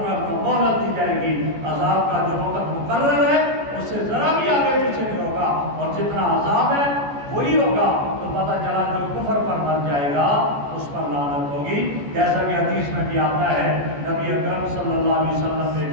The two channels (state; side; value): late; left; 14 ms